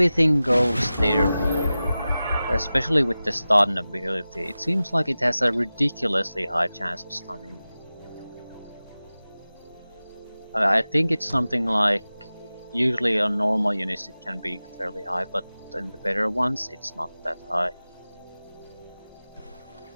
goes their way, especially with the stun ability. It seems like it has a ridiculously high chance of stunning. I think it's something like, usually on normal units it can be fairly high, but in the better ones it's not that high.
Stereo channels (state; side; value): inverted; both; correlation -0.96